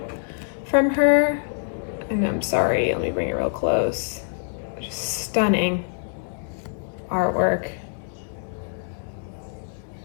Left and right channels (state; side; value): silent; right; digital silence